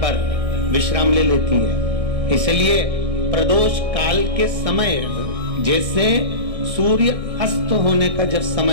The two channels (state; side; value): late; left; 1.6 ms